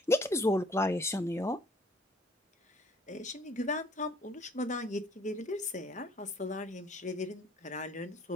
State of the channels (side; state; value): both; normal; correlation 0.58